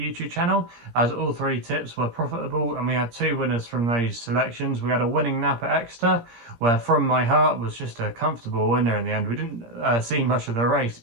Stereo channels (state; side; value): late; left; 17 ms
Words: channel, as all three tips were profitable and we had two winners from those selections. We had a winning nap at Exeter, where From My Heart was just a comfortable winner in the end. We didn't see much of the race